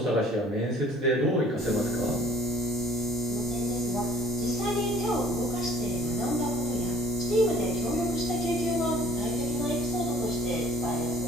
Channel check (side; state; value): both; normal; correlation 0.55